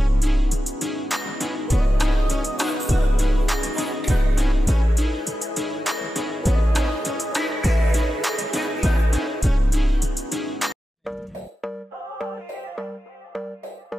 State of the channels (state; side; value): normal; both; correlation 0.92